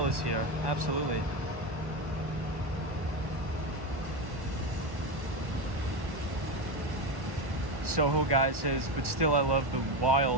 is here. Absolutely. Soho guy says, but still I love the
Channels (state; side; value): late; left; 1.2 ms